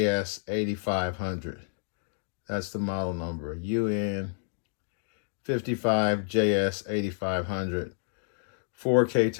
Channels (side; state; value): right; silent; digital silence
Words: That's the model number, UN55JS8500. 4K